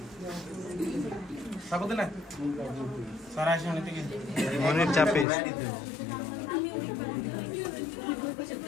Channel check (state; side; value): drops out; right; at 5.2 s